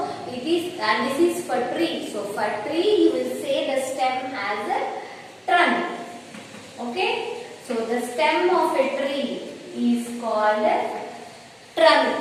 it is, and this is for tree. So for tree you will say the stem as a trunk. Okay. So the stem of a tree is called trunk.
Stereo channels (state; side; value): identical; both; correlation 1.00